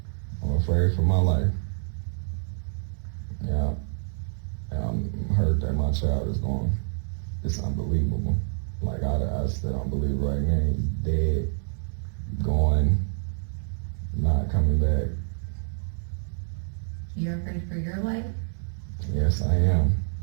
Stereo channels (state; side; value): silent; left; 60 dB below the other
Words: I'm afraid for my life. Yeah. And I'm hurt that my child is gone. It's unbelievable. Like I still don't believe right now he's dead, gone, not coming back. You're afraid for your life? Yes, I am.